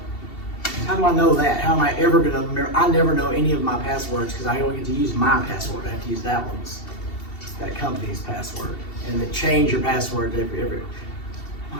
How do I know that? How am I ever gonna remember? I never know any of my passwords because I only get to use my password. I have to use that company's password. And then change your password every.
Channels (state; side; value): late; right; 2.7 ms